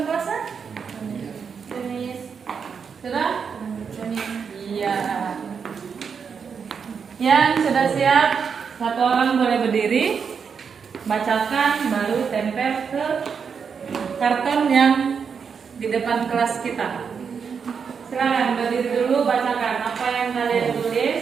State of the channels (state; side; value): quieter; left; 6.3 dB